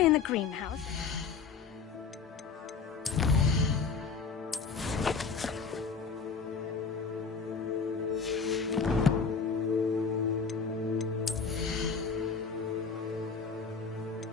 in the greenhouse.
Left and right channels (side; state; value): right; quieter; 5.3 dB